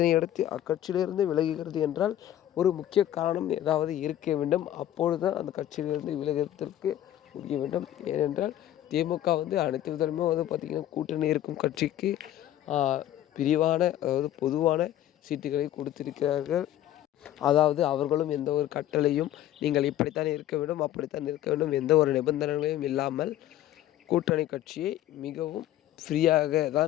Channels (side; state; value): right; quieter; 12.5 dB